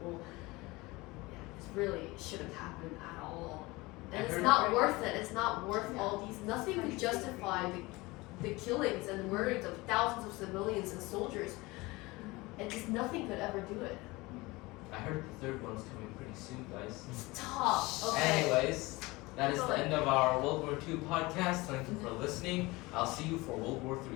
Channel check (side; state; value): right; quieter; 22.3 dB